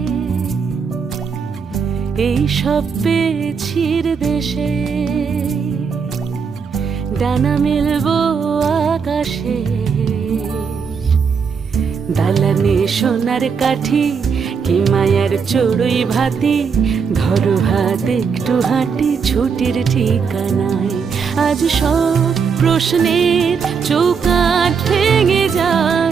এই সব পেয়েছির দেশে। ডানা মেলবো আকাশে, দালানে সোনার কাঠি কি মায়ার চড়ুই ভাতি, ধরো হাত একটু হাঁটি ছুটির ঠিকানায়। আজ সব প্রশ্নের চৌকাঠ ভেঙে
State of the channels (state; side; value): quieter; left; 6.0 dB